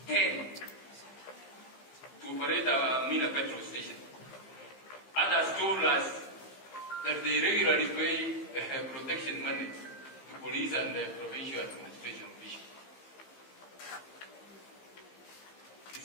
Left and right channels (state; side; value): late; right; 15 ms